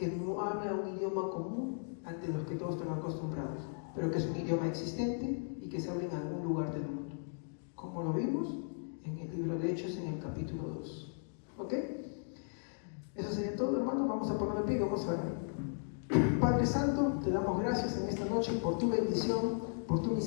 no habla un idioma común ante los que todos están acostumbrados, pero que es un idioma existente y que se habla en algún lugar del mundo, como lo vimos en el libro de Hechos en el capítulo 2. ¿Ok? Eso sería todo, hermano. Vamos a poner el pie y vamos a ver. Padre Santo, te damos gracias en esta noche por tu bendición, por tu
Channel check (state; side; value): silent; right; digital silence